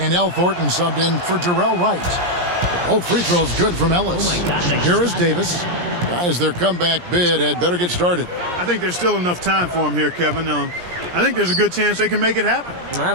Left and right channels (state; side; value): late; left; 17 ms